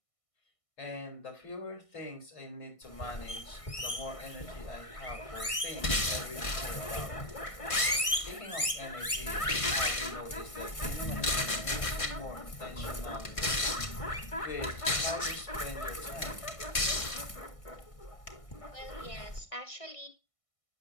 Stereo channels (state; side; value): late; right; 1.6 ms